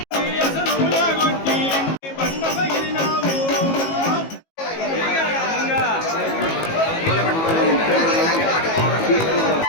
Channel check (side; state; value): right; late; 18 ms